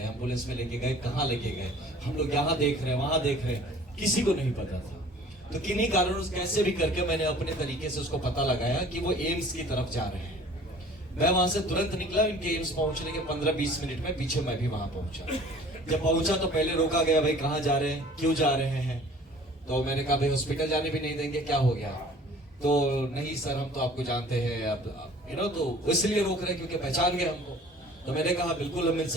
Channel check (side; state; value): both; normal; correlation 0.49